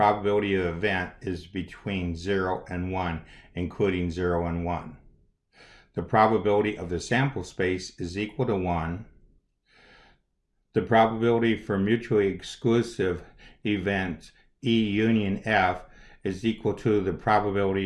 of the event is between 0 and 1, including 0 and 1. The probability of the sample space is equal to 1. The probability for mutually exclusive events E union F is equal to the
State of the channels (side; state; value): both; identical; correlation 1.00